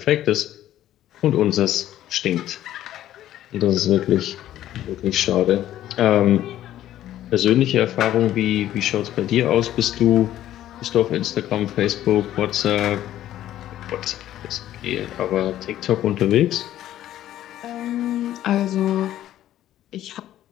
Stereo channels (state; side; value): quieter; right; 12.7 dB